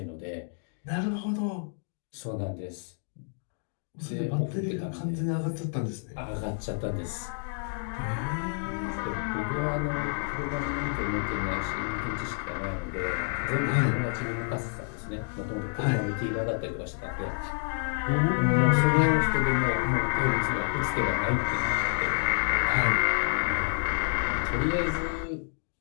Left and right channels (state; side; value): silent; right; 59 dB below the other